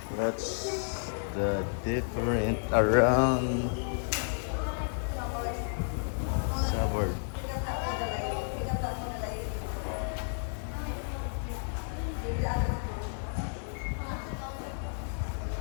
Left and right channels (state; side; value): silent; right; digital silence